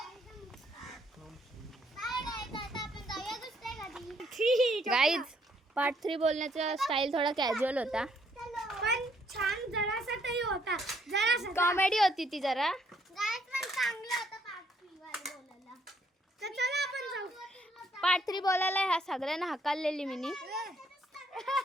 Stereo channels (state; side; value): normal; both; correlation 0.69